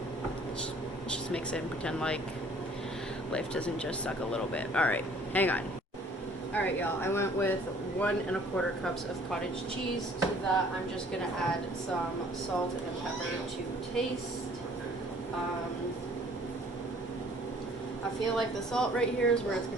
just mix it and pretend like life doesn't just suck a little bit. Alright, hang on. Alright, y'all, I went with 1 1/4 cups of cottage cheese. To that, I'm just gonna add some salt and pepper to taste. I feel like the salt right here is where it's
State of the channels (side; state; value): both; normal; correlation 0.55